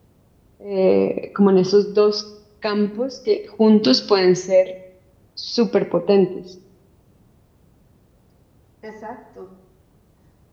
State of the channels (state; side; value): identical; both; correlation 1.00